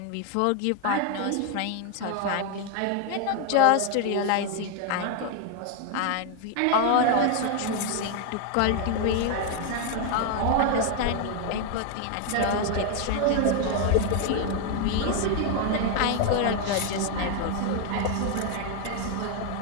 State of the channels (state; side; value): different; both; correlation 0.01